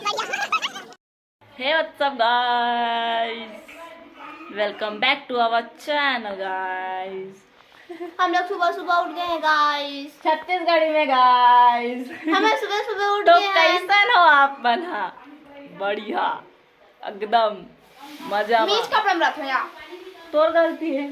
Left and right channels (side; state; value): both; identical; correlation 1.00